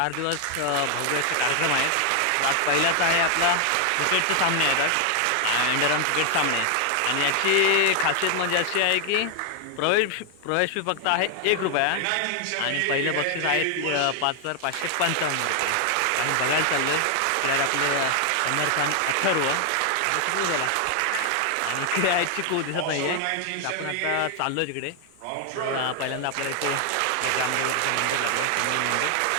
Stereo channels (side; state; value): both; different; correlation 0.00